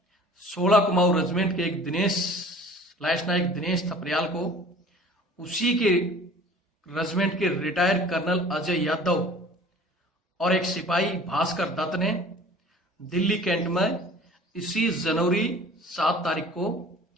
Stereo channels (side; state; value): both; normal; correlation 0.47